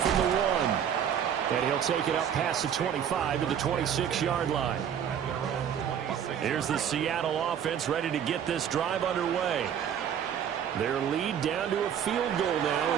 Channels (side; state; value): left; quieter; 8.8 dB